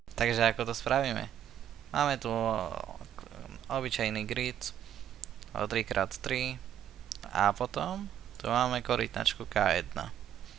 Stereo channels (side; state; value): left; quieter; 10.4 dB